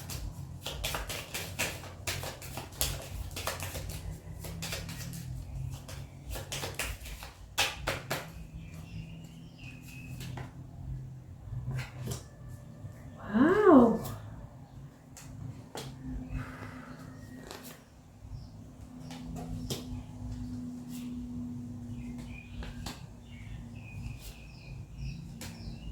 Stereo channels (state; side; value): identical; both; correlation 1.00